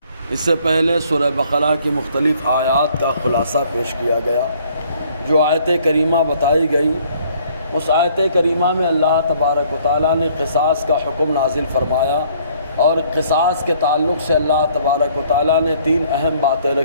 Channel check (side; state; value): both; inverted; correlation -0.61